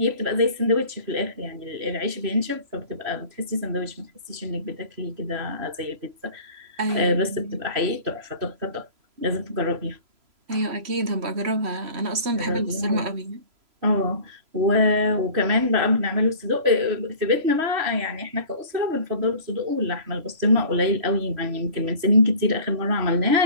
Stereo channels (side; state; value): left; late; 3.0 ms